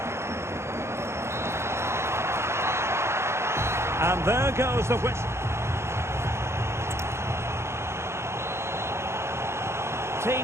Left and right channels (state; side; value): late; left; 0.13 ms